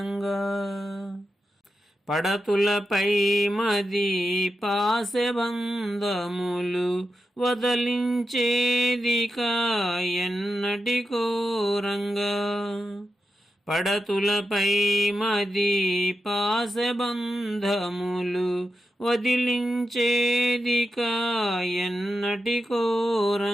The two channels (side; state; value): both; normal; correlation 0.88